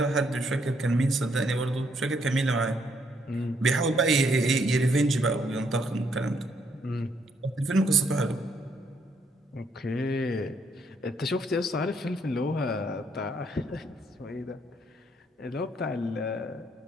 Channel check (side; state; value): both; normal; correlation 0.72